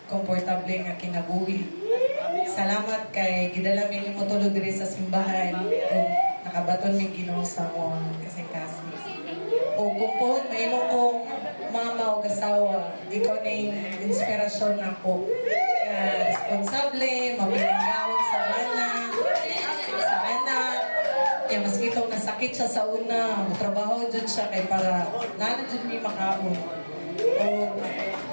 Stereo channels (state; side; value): inverted; both; correlation -1.00